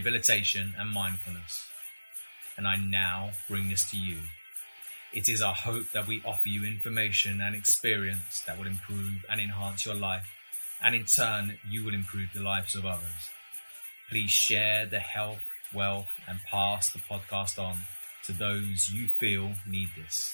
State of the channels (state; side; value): inverted; both; correlation -1.00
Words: and mindfulness. And I now bring this to you. It is our hope that we offer you information and experience that will improve and enhance your life, and in turn, you will improve the lives of others. Please share the health, wealth, and pass the podcast on to those you feel need this.